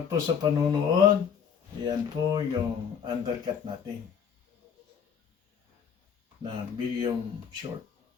po sa panunood. Yan po yung undercut natin na medium short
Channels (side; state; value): right; quieter; 7.3 dB